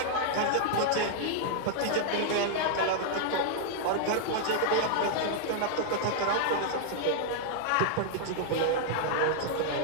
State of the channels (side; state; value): both; different; correlation -0.01